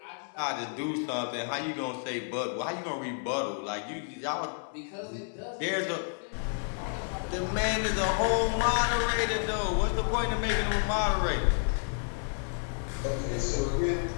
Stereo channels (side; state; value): right; silent; 57 dB below the other